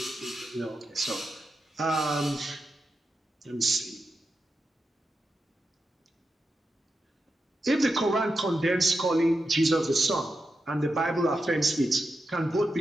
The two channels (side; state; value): both; normal; correlation 0.88